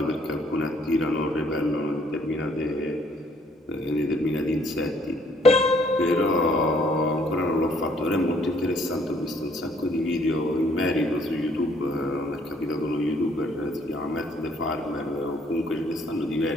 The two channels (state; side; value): normal; both; correlation 0.65